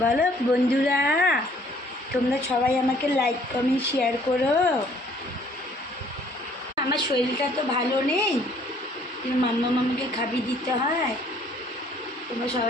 বলো বন্ধুরা, তোমরা সবাই আমাকে লাইক কমেন্ট শেয়ার করো। আমার শরীরটা তো ভালো নেই, মাম্মা মামাকে খাবি দিতে হয়। তোমরা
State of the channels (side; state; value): both; normal; correlation 0.59